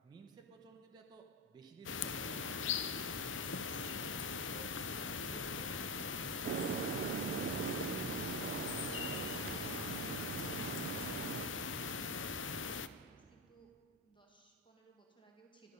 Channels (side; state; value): both; normal; correlation 0.13